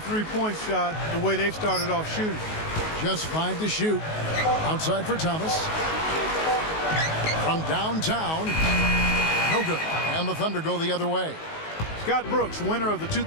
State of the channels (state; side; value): late; right; 19 ms